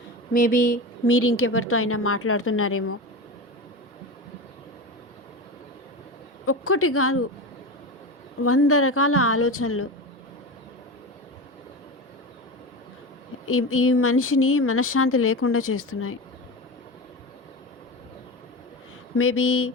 మేబీ మీరు ఇంకెవరితో అయినా మాట్లాడుతున్నారేమో. ఒక్కటి కాదు 100 రకాల ఆలోచనలు ఈ మనిషిని మనశ్శాంతి లేకుండా చేస్తున్నాయి. మేబీ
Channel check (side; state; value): both; normal; correlation 0.24